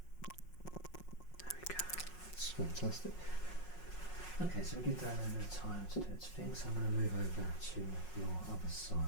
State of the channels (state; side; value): late; right; 5.5 ms